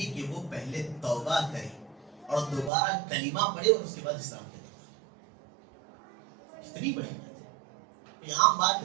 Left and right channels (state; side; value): drops out; left; at 2.7 s